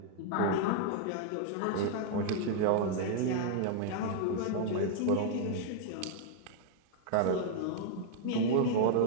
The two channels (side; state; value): both; different; correlation -0.01